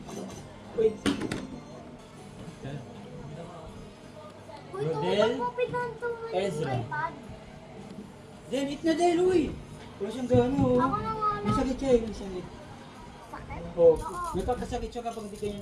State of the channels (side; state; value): both; identical; correlation 1.00